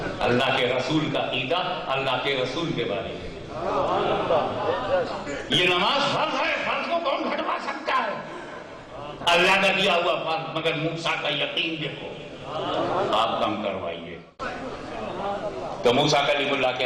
اللہ کے رسول کا عقیدہ, اللہ کے رسول کے بارے میں. یہ نماز فرض ہے, فرض کو کون گھٹوا سکتا ہے؟ اللہ کا دیا ہوا فرض, مگر موسیٰ کا یقین دیکھو. آپ کم کروائیے. تو موسیٰ کلیم اللہ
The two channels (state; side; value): identical; both; correlation 1.00